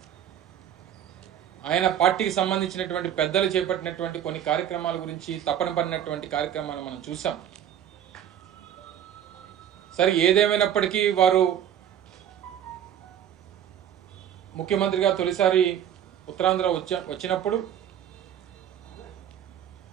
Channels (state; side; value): quieter; left; 10.1 dB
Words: ఆయన పార్టీకి సంబంధించినటువంటి పెద్దలు చేపట్టినటువంటి కొన్ని కార్యక్రమాల గురించి తపన పడినటువంటి కార్యక్రమాలు మనం చూసాం. సరే, ఏదేమైనప్పటికీ వారు ముఖ్యమంత్రిగా తొలిసారి ఉత్తరాంధ్ర వచ్చినప్పుడు